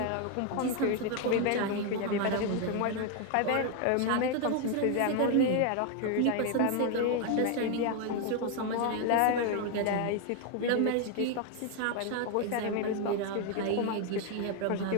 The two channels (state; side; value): different; both; correlation 0.01